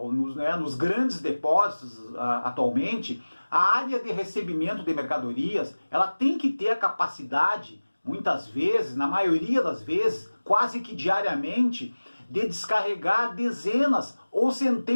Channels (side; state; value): both; inverted; correlation -1.00